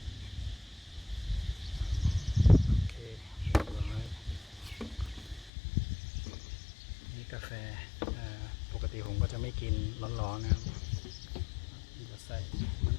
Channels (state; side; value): drops out; right; at 5.5 s